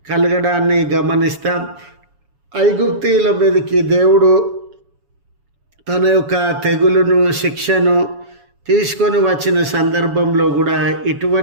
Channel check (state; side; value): late; left; 7.1 ms